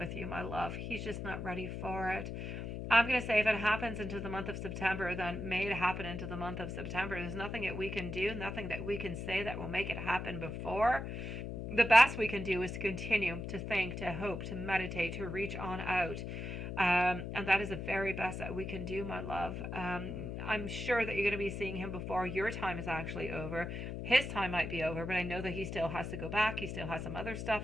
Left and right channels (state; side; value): noise; left; hum, 5 dB below the sound